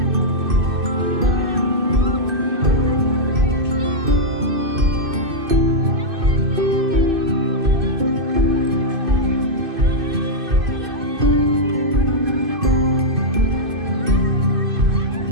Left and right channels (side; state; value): left; late; 2.6 ms